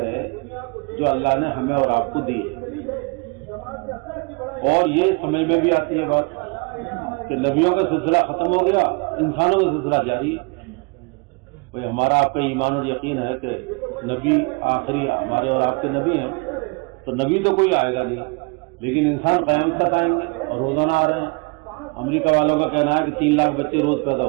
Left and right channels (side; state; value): left; quieter; 30.9 dB